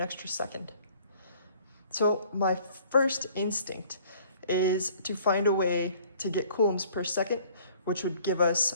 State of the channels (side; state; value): both; inverted; correlation -0.55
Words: extra second. So my first instinct is to find a way to get coulombs per second, which would give us